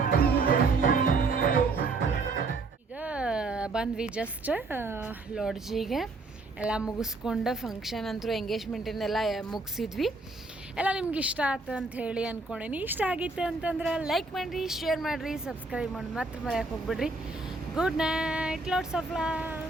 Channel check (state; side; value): quieter; left; 3.5 dB